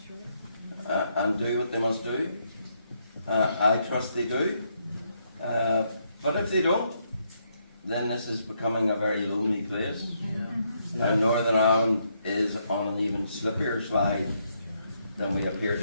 and do what they must do. I trust they do. But if they don't, then this is becoming a very lonely place. And Northern Ireland is on an even slippier slide than we appear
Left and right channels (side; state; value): both; inverted; correlation -0.75